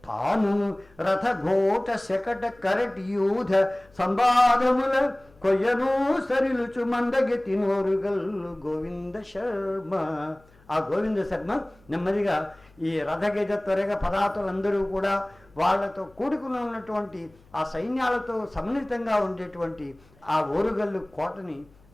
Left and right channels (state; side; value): noise; left; hum, 29 dB below the sound